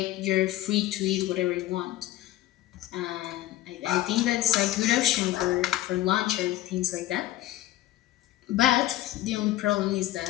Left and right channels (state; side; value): quieter; right; 15.0 dB